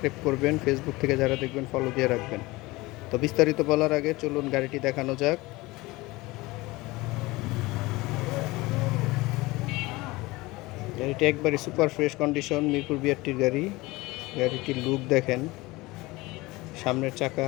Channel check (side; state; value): right; quieter; 21.3 dB